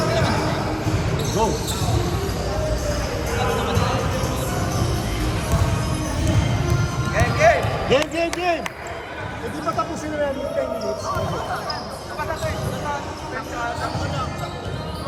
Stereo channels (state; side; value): identical; both; correlation 1.00